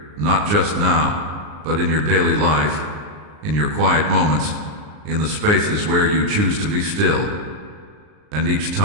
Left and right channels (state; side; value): late; left; 39 ms